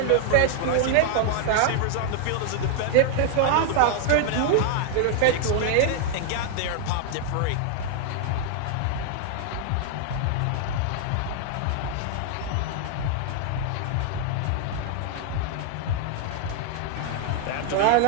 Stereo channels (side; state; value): both; different; correlation 0.00